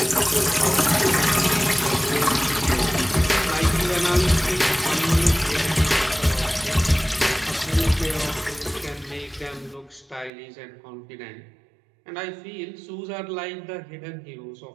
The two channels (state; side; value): drops out; left; at 10.3 s